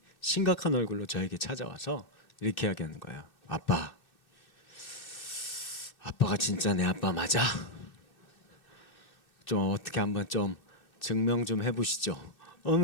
심각한 얼굴로 저에게 찾아와서 이렇게 이야기하는 거예요. 아빠가 진짜 내 아빠 맞아? 좀 어떻게 한번 좀 증명 좀 해보시죠.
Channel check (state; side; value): late; right; 2.6 ms